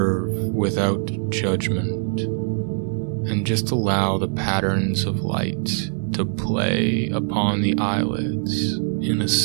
without judgment, and just allow the patterns of light to play upon the eyelids in a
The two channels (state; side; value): silent; left; 64 dB below the other